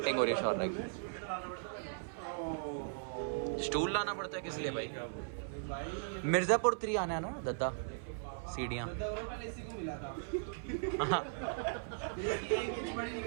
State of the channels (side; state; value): left; silent; 52 dB below the other